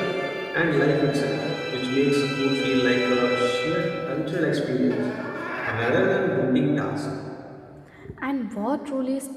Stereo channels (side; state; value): both; identical; correlation 1.00